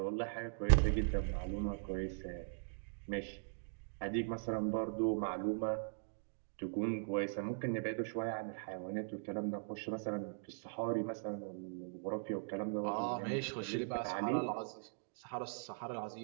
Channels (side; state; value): left; silent; digital silence